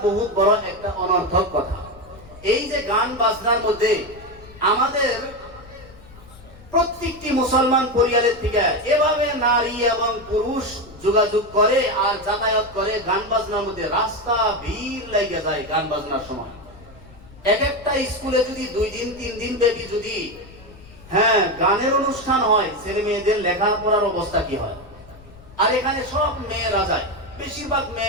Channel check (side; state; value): left; noise; rumble, 21 dB below the sound